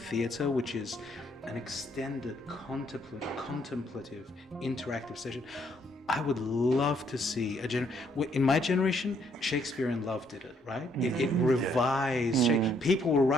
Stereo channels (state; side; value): normal; both; correlation 0.69